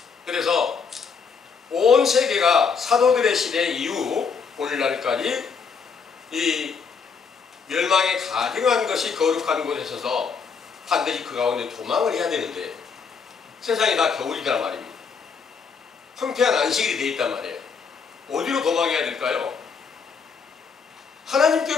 그래서 온 세계가 사도들의 시대 이후 오늘날까지 이 멸망에 가증한 것이 거룩한 곳에 있어서 반드시 그 가운데 도망을 해야 되는데, 세상이 다 겨울이란 말입니다. 황폐한 안식일이 되어 있단 말이에요. 어디로 도망해야 될까요?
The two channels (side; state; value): right; quieter; 5.7 dB